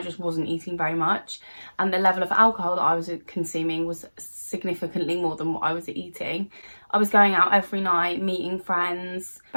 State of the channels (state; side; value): inverted; both; correlation -1.00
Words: just wasn't eating very much. And the level of alcohol that I was consuming was significantly more than what I was eating. I was going out every night, meeting friends.